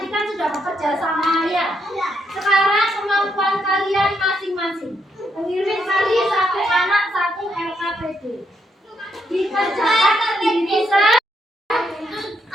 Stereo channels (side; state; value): both; normal; correlation 0.77